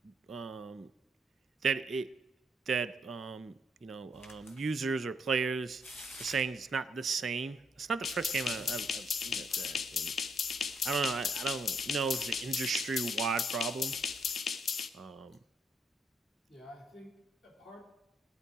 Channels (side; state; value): both; normal; correlation 0.72